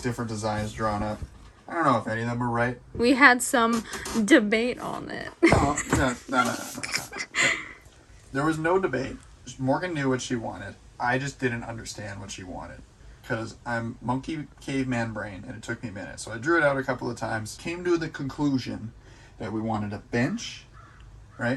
different designs drawn up. I don't know if any of them were right. We had some debate on it. No. There was no debate. Morgan knew what she wanted. I just didn't understand what she wanted. Because I'm monkey caveman brain, and it took me a minute. So I drew it out a couple of times. Came to the conclusion that we wanted a bench.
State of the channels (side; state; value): both; identical; correlation 1.00